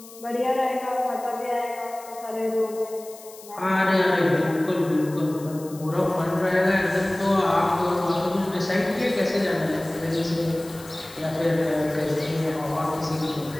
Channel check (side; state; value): left; noise; hiss, 19 dB below the sound